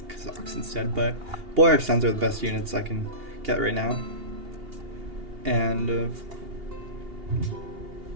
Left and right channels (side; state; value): left; late; 2.8 ms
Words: Kazakhs instead, but Boyar Sens are the best units I can get right now. And